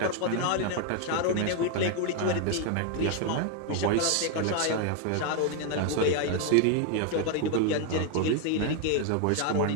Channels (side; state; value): both; different; correlation 0.01